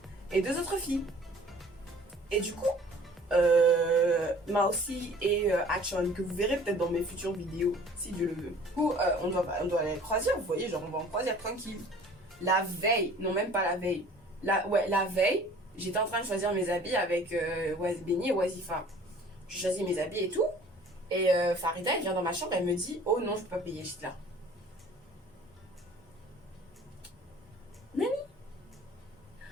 et 2 autres filles. Et du coup, Mausi et Achon, que vous verrez peut-être dans mes futures vidéos, si Dieu le veut. Du coup, on doit aller à la croisière, vous voyez, genre on va en croisière tranquille. La veille, non même pas la veille, la veille, j'étais en train de choisir mes habits avec Benny et Wazifa. Je choisis mes habits et tout, et Farida, elle vient dans ma chambre, elle me dit, oh non, je peux pas payer, j'étais là. Nani?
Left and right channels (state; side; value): normal; both; correlation 0.50